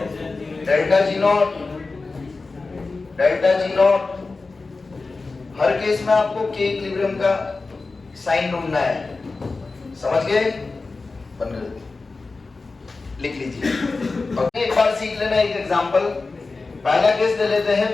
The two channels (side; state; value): right; quieter; 3.8 dB